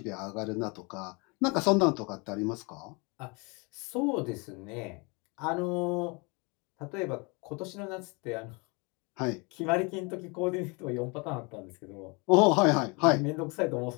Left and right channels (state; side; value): quieter; right; 29.7 dB